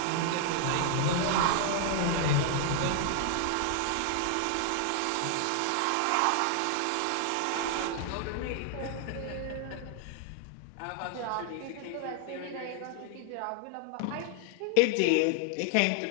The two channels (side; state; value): both; different; correlation 0.00